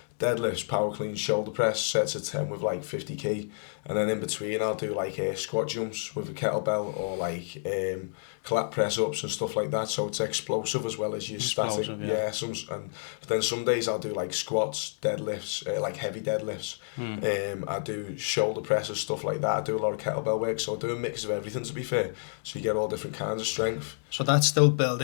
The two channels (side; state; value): right; silent; digital silence